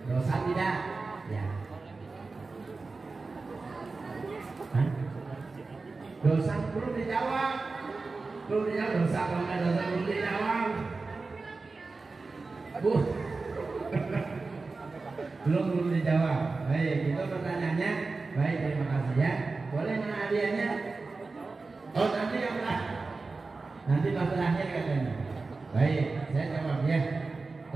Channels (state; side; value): quieter; left; 3.9 dB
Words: dosa tidak? Ya. Hah? Dosa belum dijawab, dosa kalau nggak dosa belum dijawab. Bu, belum dijawab. Baik, itu pertanyaannya. Baik, terima kasih ya. Boleh mana hadiahnya? Oh nanti yang nanti pas terakhir katanya. Baik, saya jawab ya.